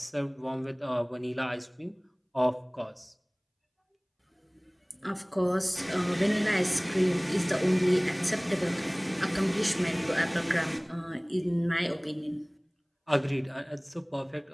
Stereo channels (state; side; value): identical; both; correlation 1.00